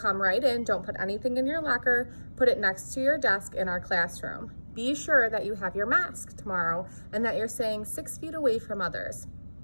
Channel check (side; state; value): both; inverted; correlation -1.00